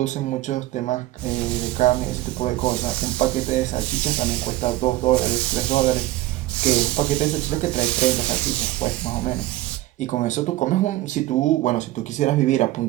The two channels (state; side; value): quieter; left; 16.3 dB